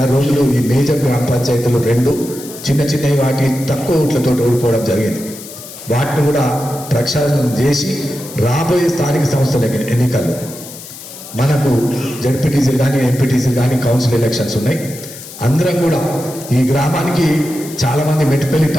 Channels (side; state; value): left; noise; hiss, 14 dB below the sound